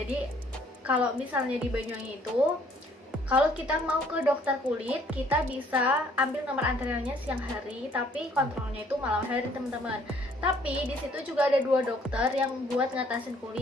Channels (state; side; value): normal; both; correlation 0.61